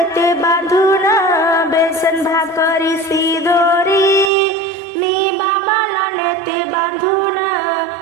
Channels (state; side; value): drops out; left; at 4.3 s